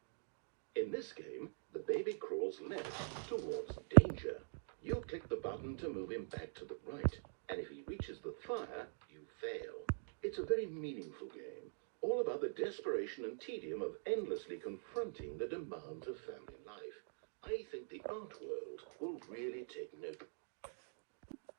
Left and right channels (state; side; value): silent; left; digital silence